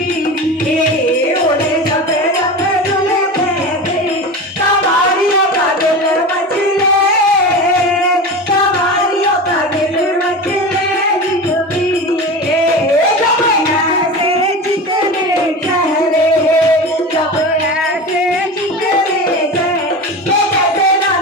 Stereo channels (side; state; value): both; normal; correlation 0.28